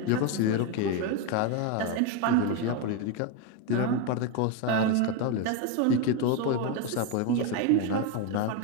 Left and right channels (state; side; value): different; both; correlation 0.02